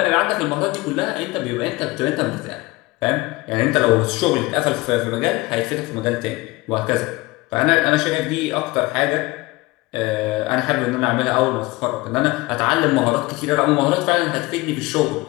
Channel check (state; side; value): quieter; right; 21.7 dB